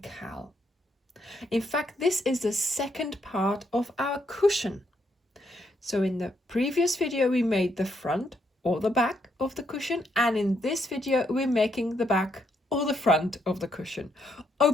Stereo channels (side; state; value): both; normal; correlation 0.76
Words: cowl. In fact, this is the second part of our cushion. So in the previous video we made the front or the back of the cushion, and in this video we're making the back or the front of the cushion, or